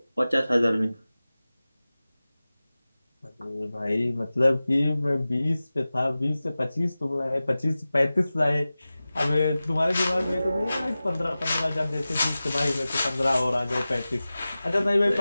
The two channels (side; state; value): both; inverted; correlation -0.96